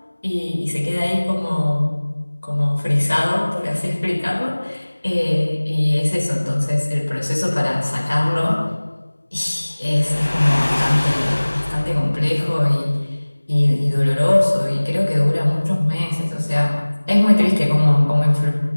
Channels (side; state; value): both; inverted; correlation -1.00